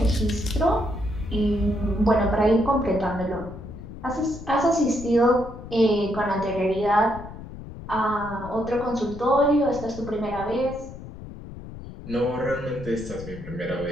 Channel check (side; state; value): left; noise; rumble, 13 dB below the sound